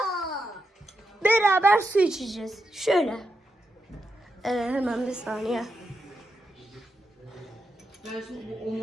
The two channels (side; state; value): both; normal; correlation 0.85